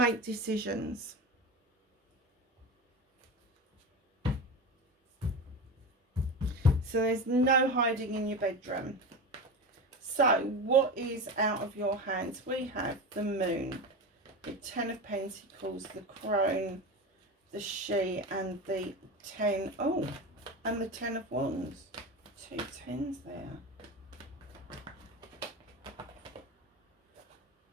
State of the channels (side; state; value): both; normal; correlation 0.25